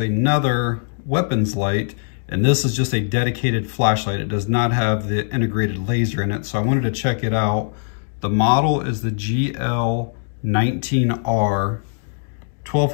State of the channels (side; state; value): right; silent; digital silence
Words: weapons light, and this is just a dedicated flashlight. It does not have the integrated laser in it, so I wanted to check it out. The model is the GL19R,